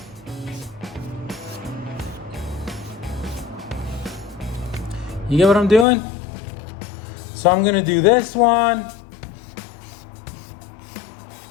You get what I'm doing? So I'm gonna do this one.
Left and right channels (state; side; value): drops out; right; at 5.9 s